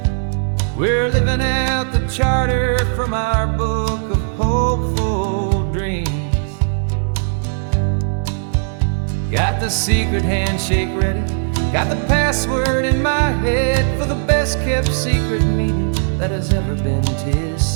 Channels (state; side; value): silent; left; digital silence